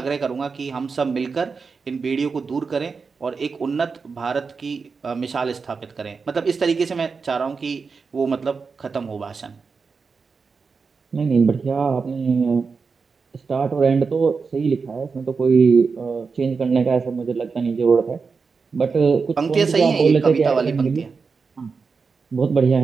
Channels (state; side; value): quieter; left; 5.0 dB